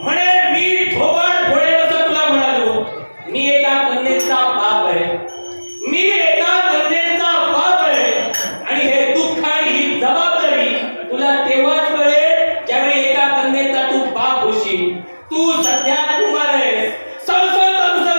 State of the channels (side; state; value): both; inverted; correlation -1.00